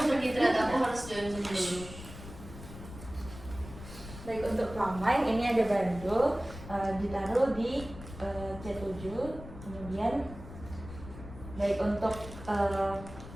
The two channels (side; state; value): left; noise; rumble, 13 dB below the sound